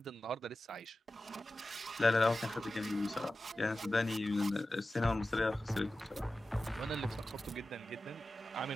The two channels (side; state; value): both; normal; correlation 0.94